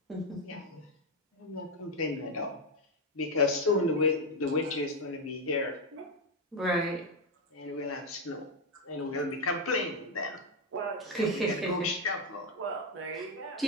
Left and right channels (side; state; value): both; normal; correlation 0.05